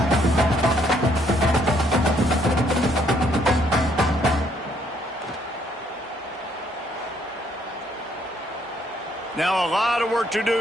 Now a lot of work to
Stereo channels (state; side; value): normal; both; correlation 0.68